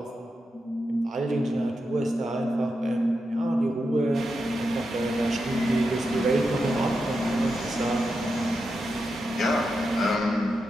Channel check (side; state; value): both; normal; correlation 0.87